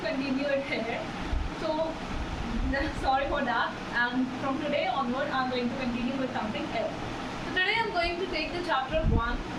it here. So sorry for that. And from today onward, I'm going to continue with something else. So today I'm going to take the chapter 1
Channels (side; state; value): both; identical; correlation 1.00